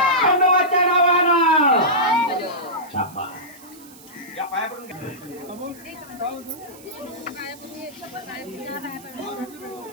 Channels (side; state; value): right; noise; hiss, 21 dB below the sound